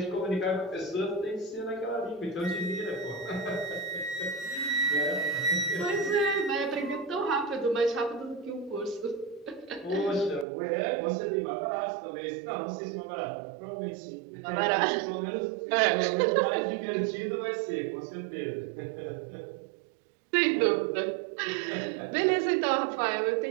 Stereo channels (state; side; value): drops out; left; at 10.5 s